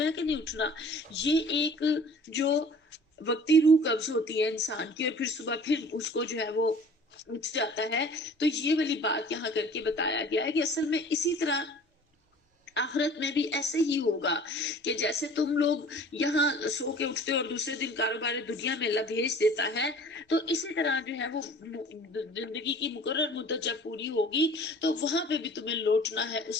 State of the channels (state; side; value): normal; both; correlation 0.47